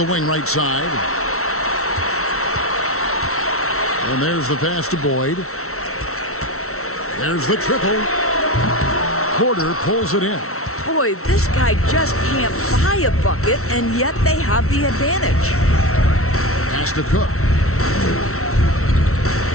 wing right side. And there's the pass to Boyd. There's the triple. Porter pulls it in. Boy, this guy just can't buy a bucket, and yet they have the advantage. Pass to Cook.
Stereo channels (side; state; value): right; late; 0.63 ms